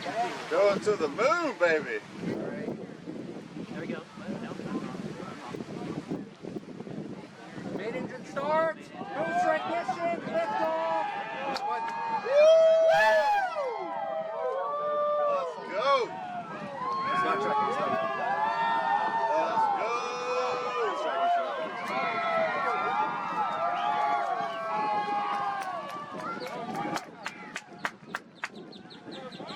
Going to the moon, baby! There we go. Main engine start. Boost ignition. Lift off. Let's go! It's not tracking, it's not tracking. Let's go! It's tracking, it's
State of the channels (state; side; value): identical; both; correlation 1.00